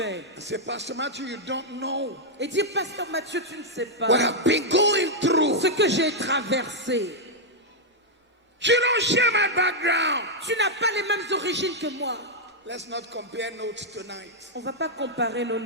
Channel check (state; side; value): normal; both; correlation -0.03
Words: I say, Pastor Matthew, you don't know et dire, Pasteur Matthieu, tu ne sais pas what I've been going through. ce que j'ai traversé. You don't share my background. Tu n'as pas les mêmes origines que moi. Let's not compare notes tonight. On ne va pas comparer nos